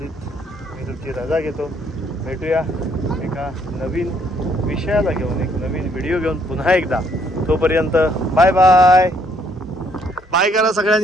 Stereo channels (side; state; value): both; normal; correlation 0.67